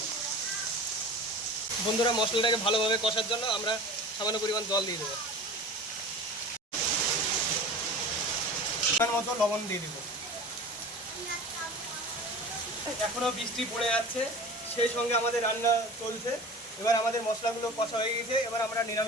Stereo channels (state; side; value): normal; both; correlation 0.37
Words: বন্ধুরা মশলাটাকে ভালোভাবে কষার জন্য আমরা সামান্য পরিমাণ জল দিয়ে দেবো। পরিমাণ মতো লবণ দিয়ে দেবো। এখনো বৃষ্টি পড়ে যাচ্ছে, সেই সঙ্গে আমাদের রান্না চলছে। এবার আমাদের মশলাগুলো কষা হয়ে গেছে, এবার আমরা